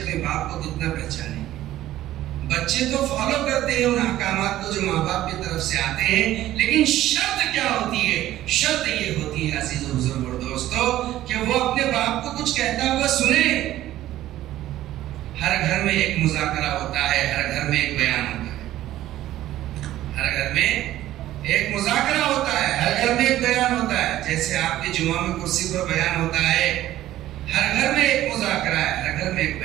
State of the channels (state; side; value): quieter; left; 14.1 dB